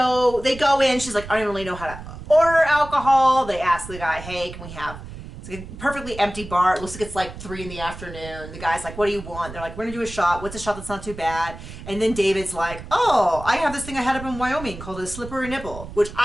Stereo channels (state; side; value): noise; right; rumble, 13 dB below the sound